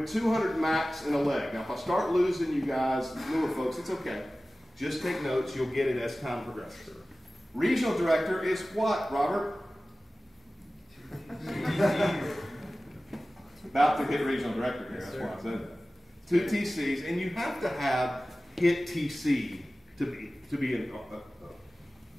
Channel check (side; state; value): both; normal; correlation 0.97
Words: 200 max in a leg. Now, if I start losing you guys, newer folks, it's okay. Just take notes. You'll get it as time progresses. Regional director is what, Robert? About to hit regional director here. That's why I said that. 2 TCs, and you have to have hit TC to be an